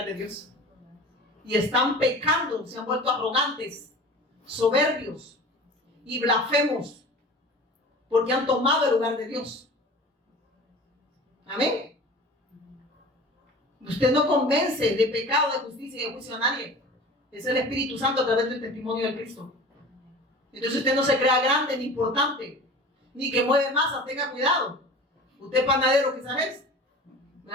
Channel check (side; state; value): both; normal; correlation 0.39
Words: de Dios. Y están pecando, se han vuelto arrogantes, soberbios y blasfemos, porque han tomado el lugar de Dios. Amén. Usted no convence de pecado, de justicia y de juicio a nadie. Es el Espíritu Santo a través del testimonio de Cristo. Entonces usted no se crea grande ni importante, ni que mueve masa, tenga cuidado. Usted es panadero quizás es,